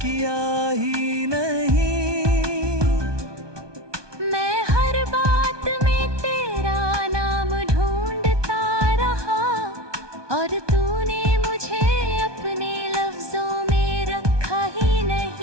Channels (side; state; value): left; late; 1.2 ms